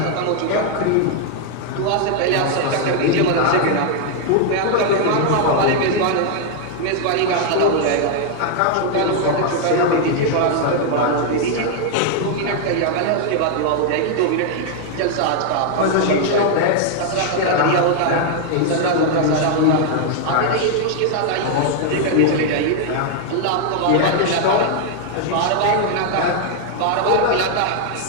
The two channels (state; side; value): different; both; correlation 0.00